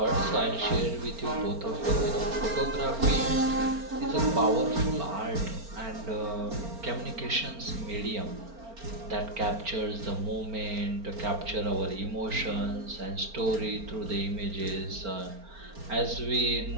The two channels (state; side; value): late; left; 4.4 ms